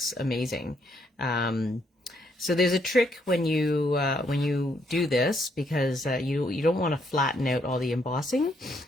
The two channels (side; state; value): both; normal; correlation 0.73